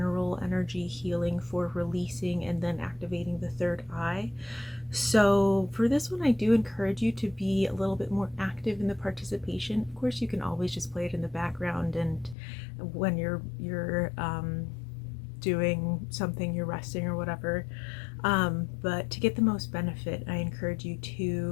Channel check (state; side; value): drops out; right; at 12.4 s